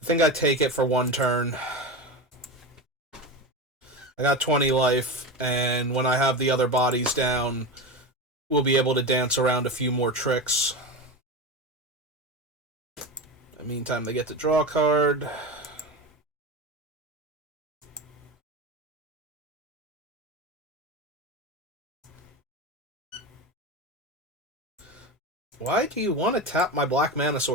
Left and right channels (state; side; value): normal; both; correlation 0.22